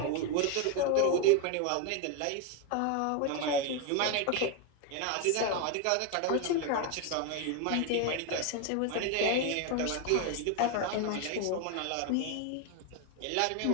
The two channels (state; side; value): different; both; correlation 0.01